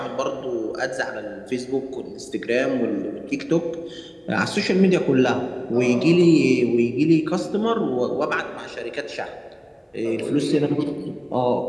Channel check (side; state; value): both; identical; correlation 1.00